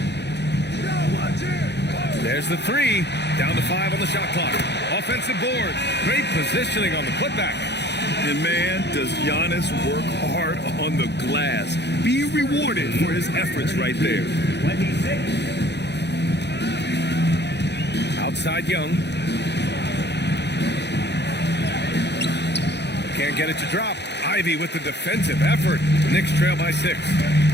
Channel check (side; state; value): right; late; 0.50 ms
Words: There's the 3. Down to 5 on the shot clock. Offensive board. Great positioning on the putback. And man, does Giannis work hard on the glass. Be rewarded for his efforts right there. 26. Outside Young. Can't get it to drop. Ivy with the defensive effort. Knicks trail by 6.